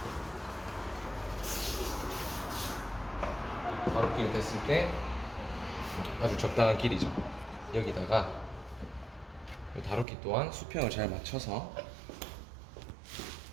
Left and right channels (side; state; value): left; drops out; at 10.1 s